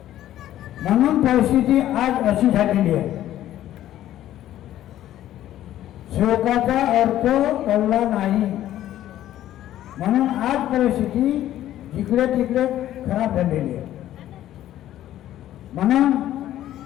म्हणून परिस्थिती आज अशी झालेली आहे. सेवकाचा अर्थ कळला नाही म्हणून आज परिस्थिती जिकडे तिकडे खराब झालेली आहे. म्हणून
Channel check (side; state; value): right; quieter; 12.8 dB